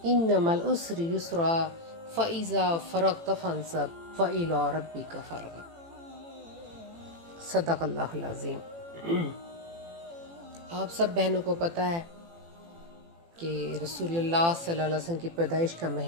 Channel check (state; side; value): late; left; 18 ms